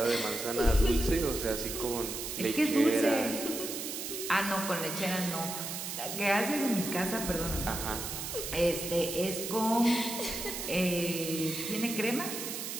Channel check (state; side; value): noise; right; hiss, 5 dB below the sound